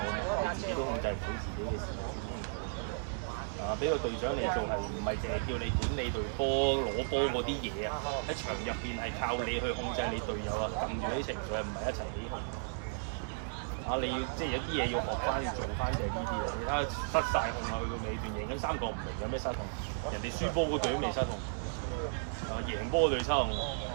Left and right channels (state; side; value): silent; left; digital silence